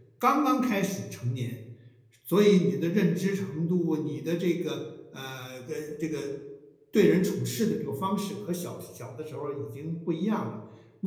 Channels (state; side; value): identical; both; correlation 1.00